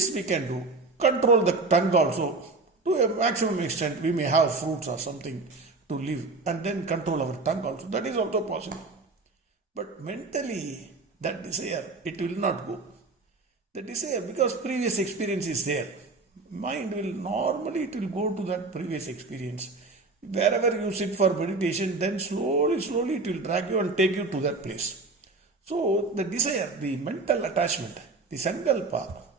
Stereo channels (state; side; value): quieter; left; 3.6 dB